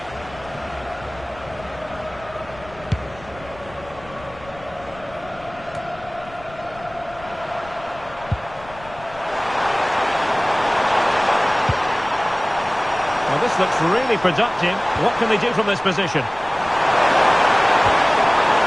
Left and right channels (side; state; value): left; noise; rumble, 20 dB below the sound